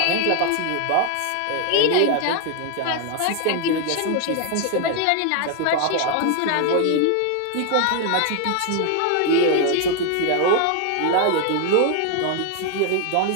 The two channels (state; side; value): different; both; correlation 0.00